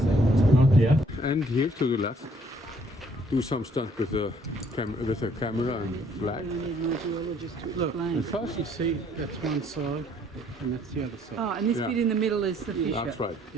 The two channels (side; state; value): both; normal; correlation 0.63